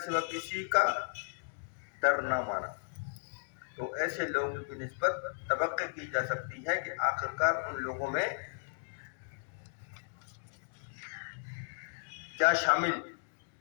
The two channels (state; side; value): silent; right; digital silence